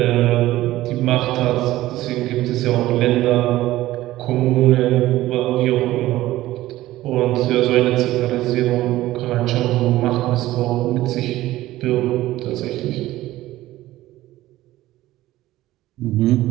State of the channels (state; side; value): quieter; left; 16.0 dB